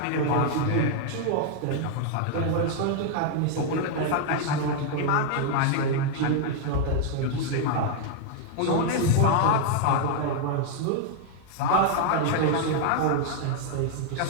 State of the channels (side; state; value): both; different; correlation 0.00